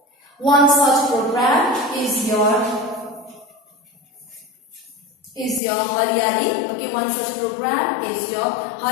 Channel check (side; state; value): right; drops out; at 5.6 s